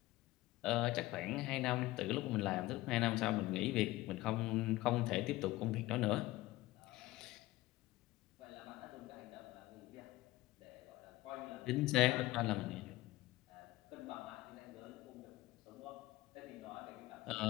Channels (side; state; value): right; quieter; 18.1 dB